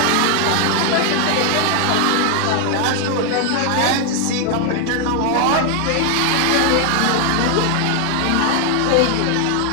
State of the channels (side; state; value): both; different; correlation 0.00